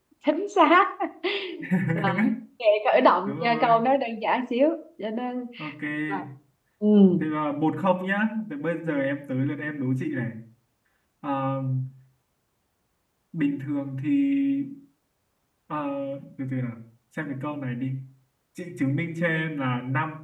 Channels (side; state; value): both; identical; correlation 1.00